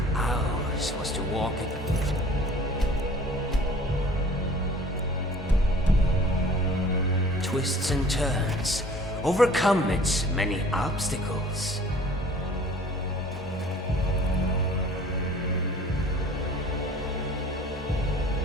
Ours was to walk it. Twists and turns, overcome its many obstacles.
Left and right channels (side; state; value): both; normal; correlation 0.49